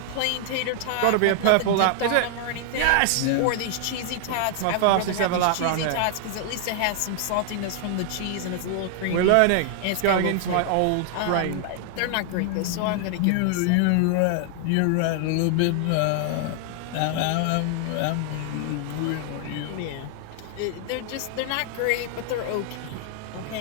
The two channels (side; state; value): both; different; correlation 0.00